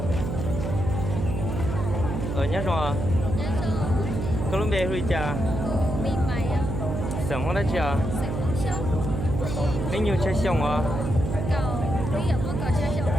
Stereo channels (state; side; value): noise; right; hum, 3 dB below the sound